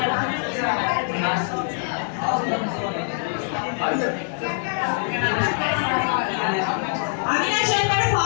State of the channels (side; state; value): right; silent; 63 dB below the other